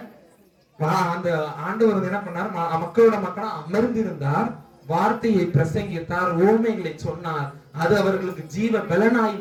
அந்த ஆண்டவர் என்ன பண்ணார்? மக்களோட மக்களா அமர்ந்திருந்தார், வார்த்தையை பிரசங்கித்தார், ஓமைகளை சொன்னார். அது அவர்களுக்கு ஜீவ பலனாய்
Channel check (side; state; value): both; identical; correlation 1.00